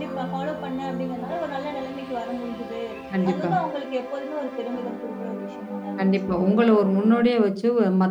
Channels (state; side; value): identical; both; correlation 1.00